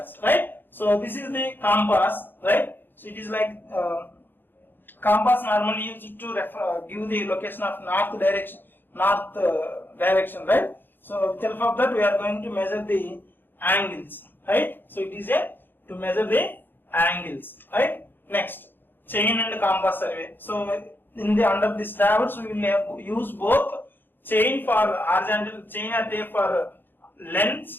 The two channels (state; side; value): late; right; 0.097 ms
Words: right? So this is the compass, right? So it is like compass normally used to give the location of north direction, right? So with help of that we are going to measure the angles, right? So it is to measure the angles, right? Next, chain and compass survey. So in the under this traverse we will use both chain for horizontal, chain or tape for